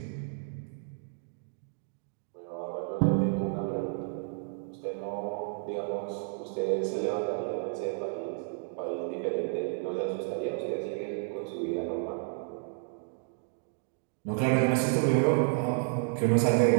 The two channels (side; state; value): left; silent; digital silence